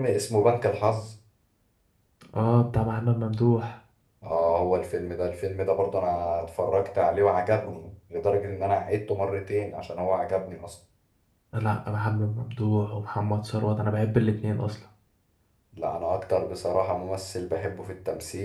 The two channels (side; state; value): both; identical; correlation 1.00